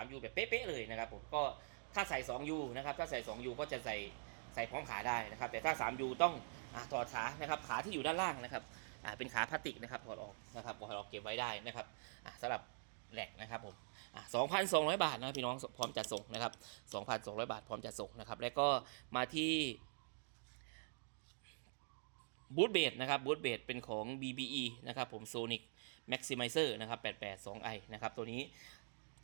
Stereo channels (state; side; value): silent; left; digital silence